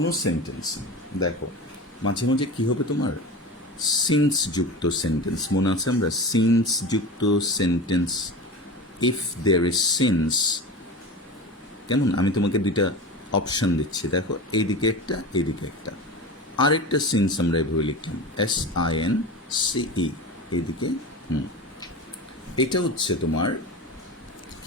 sentence দেখো মাঝে মাঝে কি হবে তোমার since যুক্ত সেন্টেন্স, মনে আছে আমরা সিন্স যুক্ত sentence, if there is since, কেমন আমি তোমাকে দুইটা অপশান দিচ্ছি, দেখো এইদিকে একটা এইদিকে একটা, আরেকটা সিন্স আমরা এভাবে লিখলাম SINCE, এইদিকে এটা হচ্ছে তোমার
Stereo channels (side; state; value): both; normal; correlation 0.29